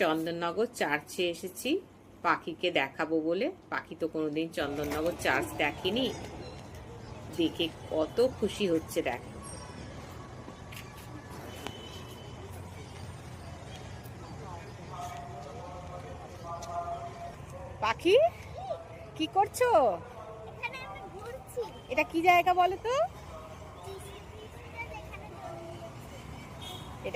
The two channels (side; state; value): both; identical; correlation 1.00